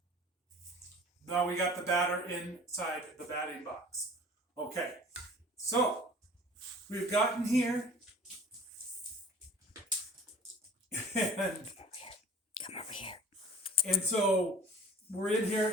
now we got the batter inside the batting box. Okay. So we've gotten here. And Come over here. And so we're in here,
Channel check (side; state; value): both; normal; correlation 0.47